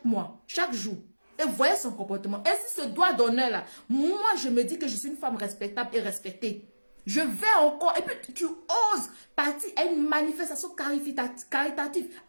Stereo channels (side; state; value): both; inverted; correlation -1.00